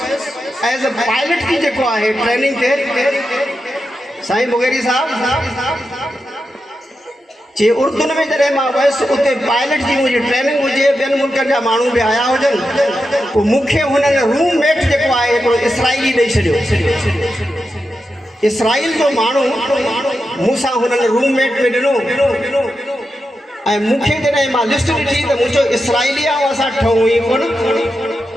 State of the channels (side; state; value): both; normal; correlation 0.89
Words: एज़ अ पायलट की जेको आहे ट्रेनिंग ते, साईं मुगेरी साहब चई उर्दून में जॾहिं मां वियुसि उते पायलट जी मुंहिंजी ट्रेनिंग हुजे, ॿियनि मुल्कनि जा माण्हू बि आया हुजनि, पोइ मूंखे हुननि रूममेट जेको आहे हिकिड़ो इसराइली ॾेई छॾियो। इसराइल जो माण्हू मूंसां हुननि रूममेट में ॾिनो ऐं मूंखे जॾहिं मां लिस्ट ॾिठी त मुंहिंजो इसराइली आहे असां ठहूं ई कोन